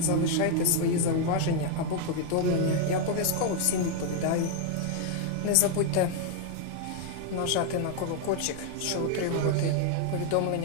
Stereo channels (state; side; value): different; both; correlation 0.00